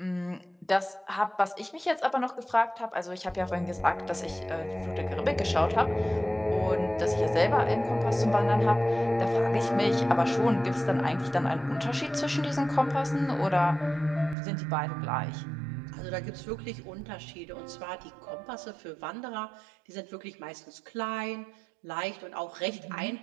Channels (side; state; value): left; drops out; at 14.4 s